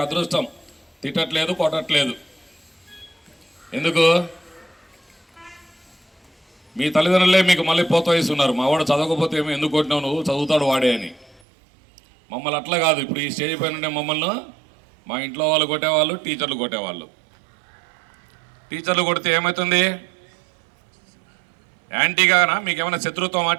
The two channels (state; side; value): drops out; left; at 11.4 s